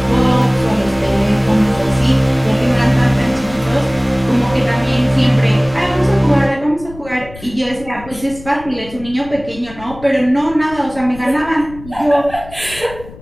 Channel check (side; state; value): left; noise; rumble, 17 dB below the sound